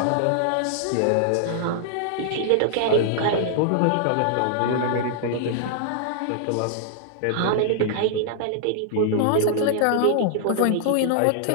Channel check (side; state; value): both; different; correlation -0.01